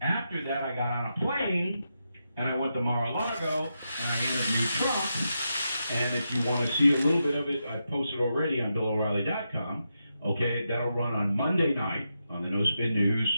after that, I got on a plane and I went to Mar-a-Lago and I interviewed Trump. And if you want to see a little bit of it, I posted already on BillO'Reilly.com. Okay, that'll run on Monday night on the No Spin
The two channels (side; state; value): both; inverted; correlation -0.86